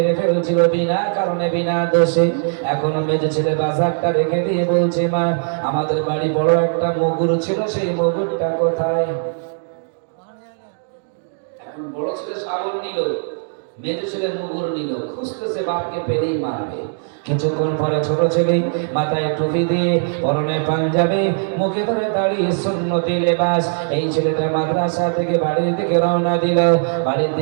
ফেলছিল বিনা কারণে, বিনা দোষে। এখন মেজো ছেলে বাজারটা রেখে দিয়ে বলছে মা আমাদের বাড়ি বড় একটা মগুর ছিল, সেই মগুরটা কোথায়? এখন বড় ছেলে শাবল নিল, মেজো ছেলে মগুর নিল, খুঁজতেছে বাপকে পেলেই মারবে। কিছুক্ষণ পরে ছোট ছেলে মাথায় টুপি দিয়ে, পরনে পাঞ্জাবি, মুখে ধরে দাঁড়িয়ে সুন্নতি লেবাস, এই ছেলেটা মাদ্রাসা থেকে বাড়ির দিকে রওনা দিল। বাড়ির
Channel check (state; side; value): silent; left; digital silence